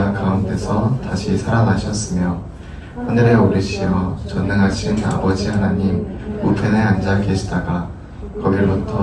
가운데서 다시 살아나셨으며 하늘에 오르시어 전능하신 아버지 하나님 우편에 앉아 계시다가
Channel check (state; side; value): identical; both; correlation 1.00